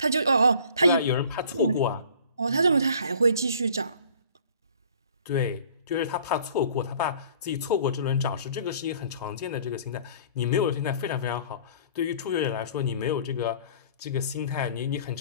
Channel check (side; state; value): both; inverted; correlation -0.50